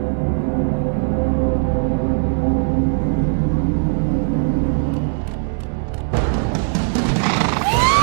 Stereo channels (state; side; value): silent; left; 56 dB below the other